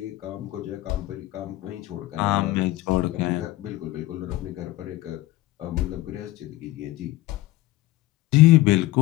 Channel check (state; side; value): quieter; right; 17.3 dB